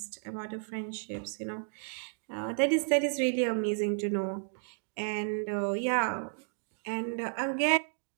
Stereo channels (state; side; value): silent; left; 56 dB below the other